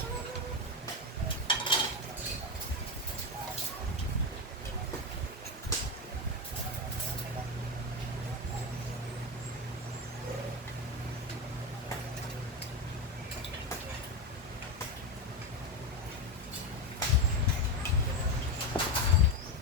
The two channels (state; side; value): normal; both; correlation 0.14